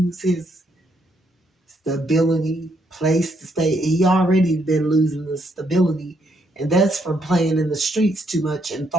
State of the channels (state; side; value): normal; both; correlation 0.74